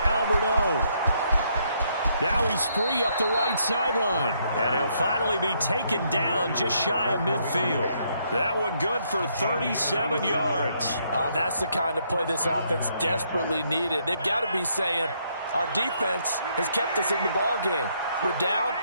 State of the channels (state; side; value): inverted; both; correlation -0.72